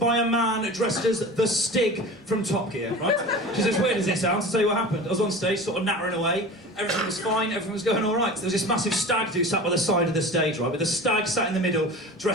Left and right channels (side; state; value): both; normal; correlation 0.35